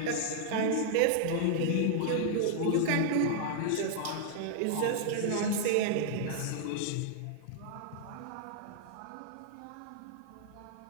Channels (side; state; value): both; different; correlation -0.01